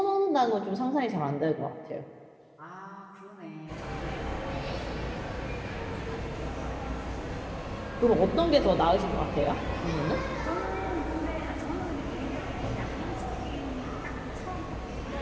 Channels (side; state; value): both; identical; correlation 1.00